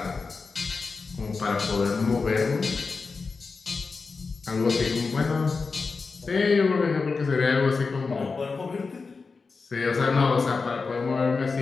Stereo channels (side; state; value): right; quieter; 4.5 dB